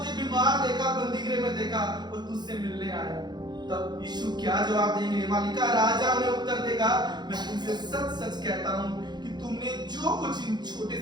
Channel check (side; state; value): left; late; 0.21 ms